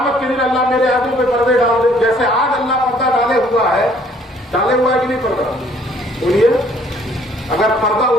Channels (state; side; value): normal; both; correlation 0.60